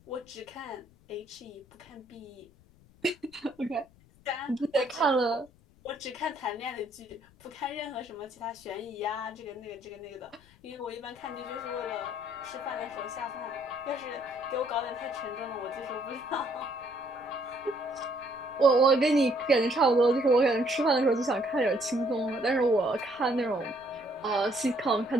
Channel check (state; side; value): noise; left; rumble, 28 dB below the sound